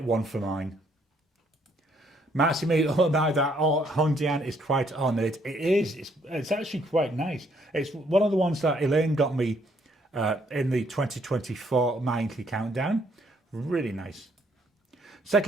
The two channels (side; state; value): both; normal; correlation 0.68